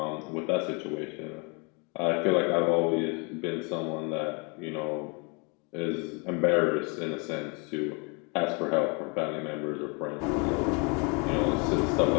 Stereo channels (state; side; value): quieter; right; 32.7 dB